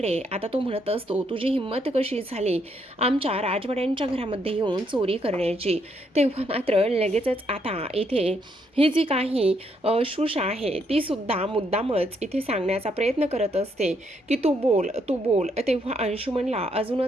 आता तो म्हणत असतो तुझी हिंमत कशी झाली आमच्या राजवाड्यांच्या घरामध्ये येऊन चोरी करण्याची? तेव्हा मात्र लगेचच आता इथे ही जी काही शुषा आहे ती सुद्धा मुद्दामच इथे सांगण्याचा प्रयत्न करत असते की तू बोल तू बोल। तेव्हा अंशुमनला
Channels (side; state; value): both; normal; correlation 0.74